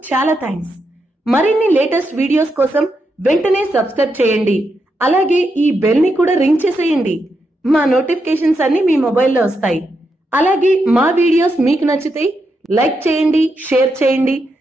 చాలా థ్యాంక్స్. మరిన్ని లేటెస్ట్ వీడియోస్ కోసం వెంటనే సబ్స్క్రైబ్ చేయండి. అలాగే ఈ బెల్ ని కూడా రింగ్ చేసేయండి. మా నోటిఫికేషన్స్ అన్ని మీ మొబైల్లో వస్తాయి. అలాగే మా వీడియోస్ మీకు నచ్చితే లైక్ చేయండి, షేర్ చేయండి,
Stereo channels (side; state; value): both; normal; correlation 0.83